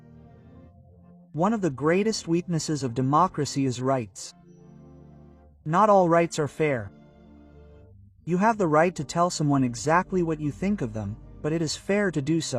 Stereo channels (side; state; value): both; identical; correlation 1.00